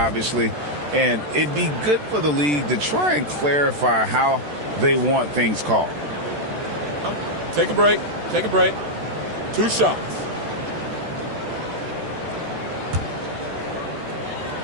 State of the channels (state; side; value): late; left; 14 ms